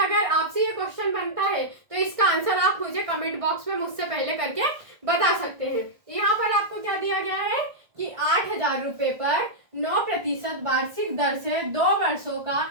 आपसे ये क्वेश्चन बनता है तो इसका आंसर आप मुझे कमेंट बॉक्स में मुझसे पहले करके बता सकते हैं। यहाँ पर आपको क्या दिया गया है कि 8000 रुपये पर 9% वार्षिक दर से 2 वर्षों का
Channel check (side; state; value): left; late; 1.5 ms